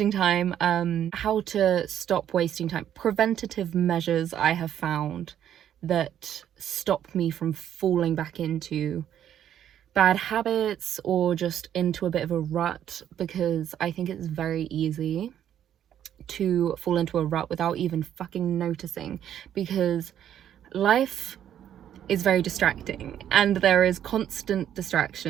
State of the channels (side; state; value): left; quieter; 10.3 dB